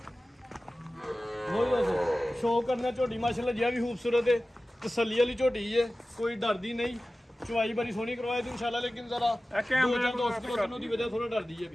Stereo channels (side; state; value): both; normal; correlation 0.96